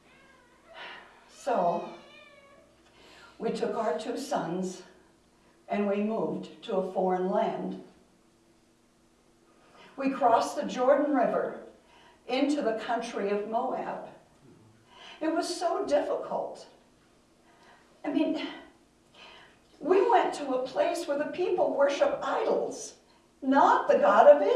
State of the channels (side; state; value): both; identical; correlation 1.00